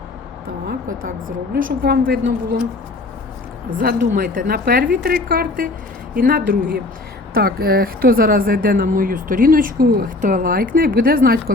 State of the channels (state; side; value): quieter; right; 3.0 dB